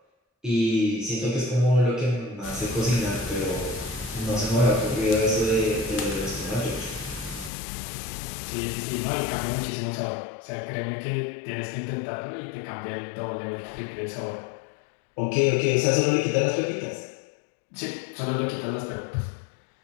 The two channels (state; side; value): drops out; right; at 7.5 s